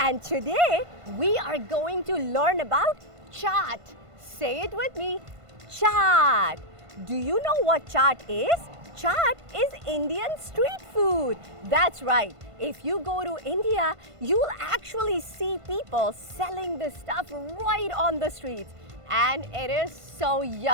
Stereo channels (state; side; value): late; left; 1.5 ms